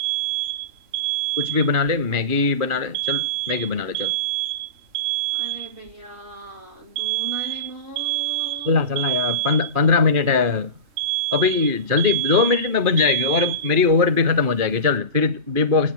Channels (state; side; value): late; left; 2.5 ms